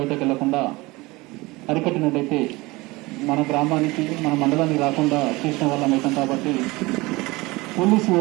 వెళ్లకుండా అరికట్టినట్టయితే మన గ్రామానికి, మన మండలానికి రాకుండా చేసిన వాళ్ళం అవుతాం. కాబట్టి పోలీసు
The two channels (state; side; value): quieter; left; 22.2 dB